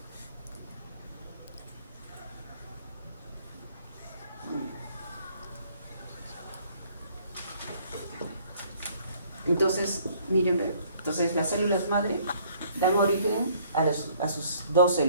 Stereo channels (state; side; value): inverted; both; correlation -0.60